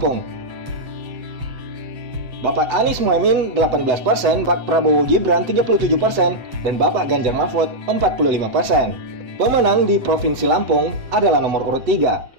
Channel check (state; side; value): late; left; 7.8 ms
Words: Bapak Anies Muhaimin 18%, Bapak Prabowo Gibran 37%, dan Bapak Ganjar Mahfud 45%. Pemenang di Provinsi Lampung adalah nomor urut